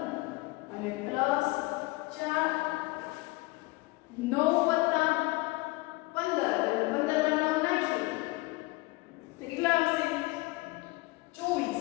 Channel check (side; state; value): right; quieter; 22.6 dB